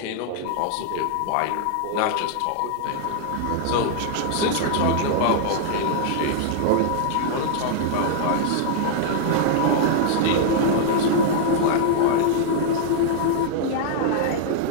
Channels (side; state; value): both; different; correlation -0.01